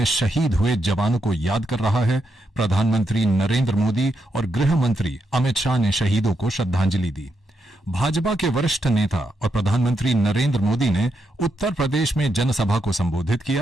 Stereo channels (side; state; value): both; normal; correlation 0.82